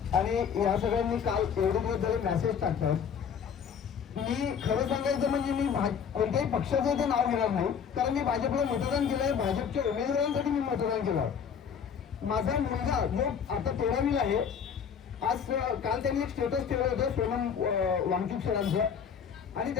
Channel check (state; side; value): quieter; right; 7.3 dB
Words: आणि या सगळ्यांनी काल एवढे दिवस झाले मेसेज टाकतात. मी खरं सांगायचं म्हणजे मी कोणत्याही पक्षाचं इथे नाव घेणार नाही, कारण मी भाजपला मतदान केलंय, भाजपच्या उमेदवारांसाठी मी मतदान केलं. माझा मुलगा जो आता 13वीला आहे, आज काल त्यांनी एक स्टेटस ठेवलं होतं सोनम वांगचूक सरांचं, आणि